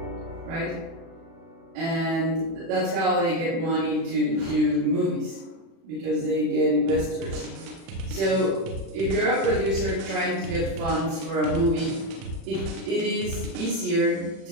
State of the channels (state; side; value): late; left; 36 ms